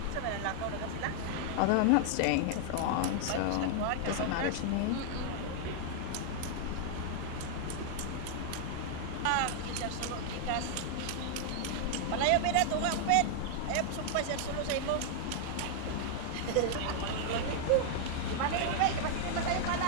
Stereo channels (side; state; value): both; different; correlation 0.00